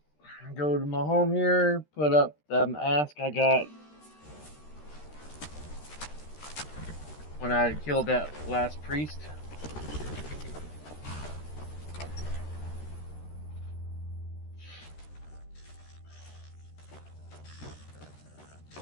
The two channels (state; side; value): late; right; 13 ms